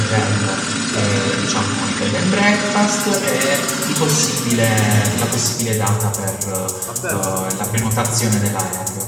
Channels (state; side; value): identical; both; correlation 1.00